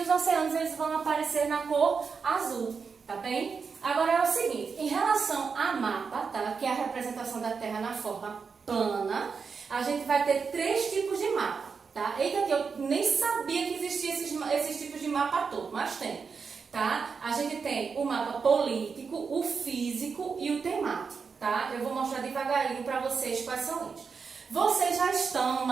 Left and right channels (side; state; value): left; quieter; 5.5 dB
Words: oceanos eles vão aparecer na cor azul, tá bem? Agora é o seguinte, em relação a mapa, tá? Que é a representação da Terra na forma plana, a gente vai ter três tipos de mapa. Tá? Eita, que eu nem sabia que existiam esses tipos de mapa todo, mas tem, tá? A gente tem o mapa político, o físico e o temático, tá? Eu vou mostrar devagarinho para vocês quais são eles. Vocês já estão